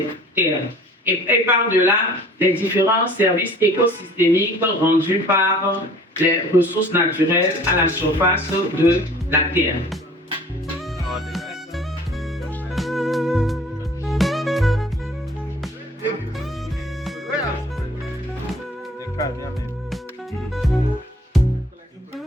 terres. Et par-delà, les différents services écosystémiques rendus par les ressources naturelles à la surface de la Terre.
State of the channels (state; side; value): normal; both; correlation 0.50